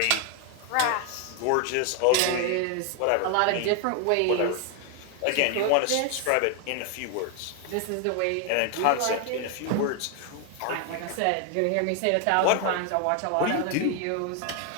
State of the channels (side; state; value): both; different; correlation 0.00